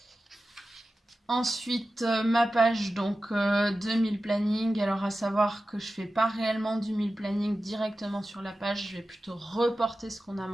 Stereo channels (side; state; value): both; normal; correlation 0.94